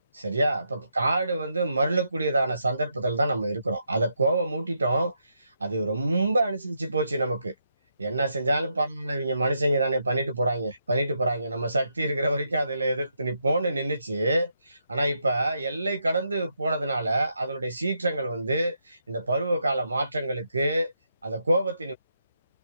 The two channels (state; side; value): inverted; both; correlation -0.80